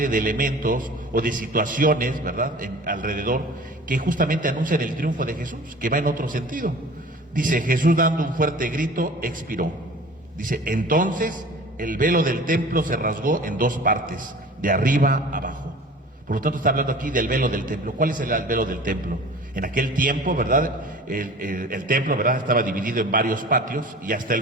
de elementos o de situaciones, ¿verdad?, alrededor, que justamente anuncian el triunfo de Jesús, que va en otro sentido. Dice, Jesús dando un fuerte grito, expiró. Dice, entonces el velo del templo se rasgó en dos partes, de arriba a abajo. Por lo tanto, está hablando aquí del velo del templo. ¿Cuál es el velo del templo? En aquel tiempo, ¿verdad?, el templo, ¿verdad?, estaba dividido en varios patios, y hasta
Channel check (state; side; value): normal; both; correlation 0.42